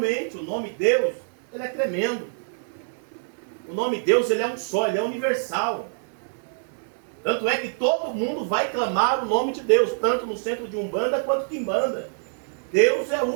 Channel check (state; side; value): silent; left; 62 dB below the other